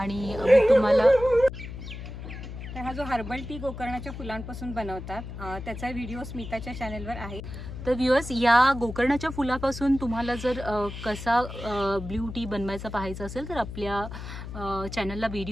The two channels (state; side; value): noise; left; hum, 9 dB below the sound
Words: मी तुम्हाला. तर हा जो हर्बल टी गोकर्णाच्या फुलांपासून बनवतात त्याचा व्हिडिओ स्मिताच्या चॅनलवर आहे. तर व्ह्यूअर्स, या गोकर्णाच्या फुलापासून तुम्हाला जर कसा ब्ल्यू टी बनवायचा पाहायचा असेल तर आपल्या चॅनलला